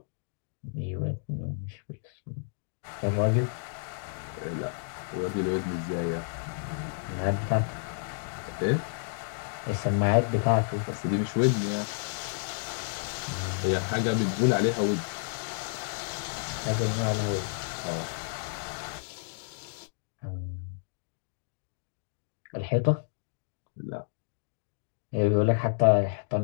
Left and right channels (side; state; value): right; silent; digital silence